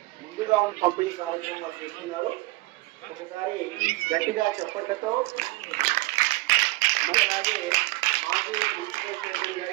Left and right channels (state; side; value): quieter; left; 21.4 dB